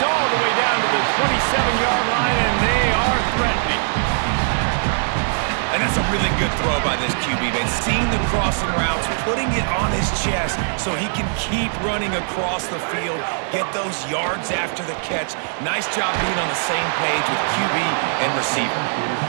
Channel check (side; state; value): left; silent; 65 dB below the other